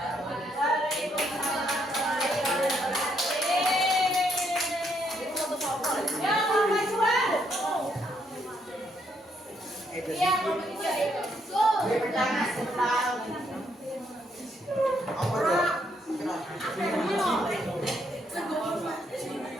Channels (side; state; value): both; normal; correlation 0.74